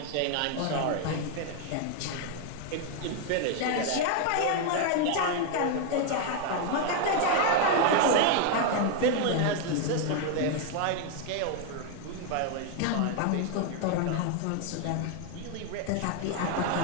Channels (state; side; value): different; both; correlation 0.01